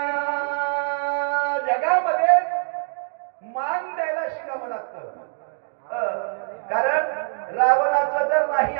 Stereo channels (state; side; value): silent; left; digital silence